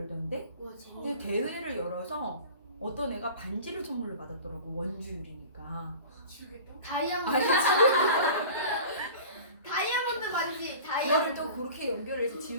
근데 대회를 열어서 어떤 애가 반지를 선물로 받았더라고. 원주율이니까. 다이아몬드 다이아몬드 반지 그거를 다이아몬드 또 그렇게 연결해서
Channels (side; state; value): both; inverted; correlation -0.39